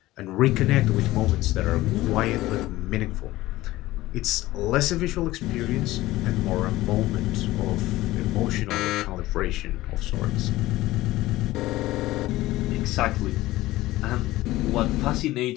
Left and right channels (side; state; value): right; quieter; 17.3 dB